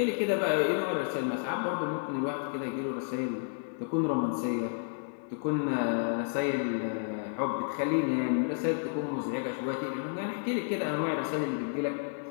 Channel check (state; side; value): silent; right; digital silence